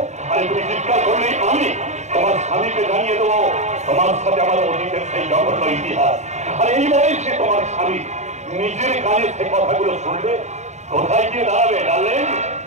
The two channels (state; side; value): late; left; 0.34 ms